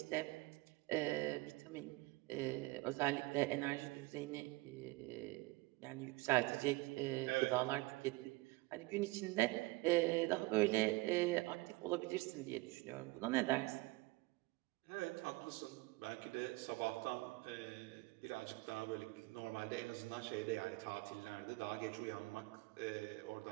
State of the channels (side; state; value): left; quieter; 22.6 dB